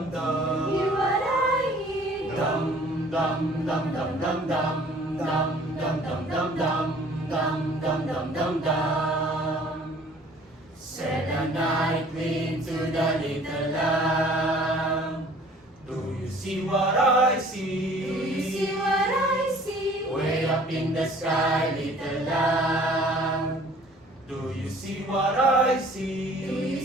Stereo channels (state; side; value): normal; both; correlation 0.52